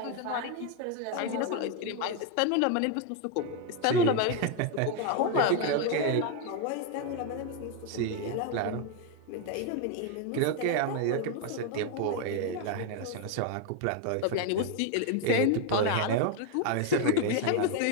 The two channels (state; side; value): different; both; correlation 0.01